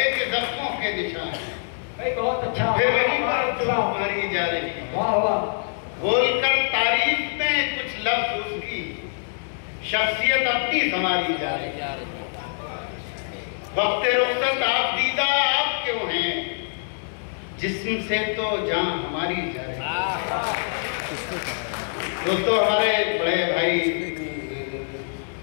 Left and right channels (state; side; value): silent; right; digital silence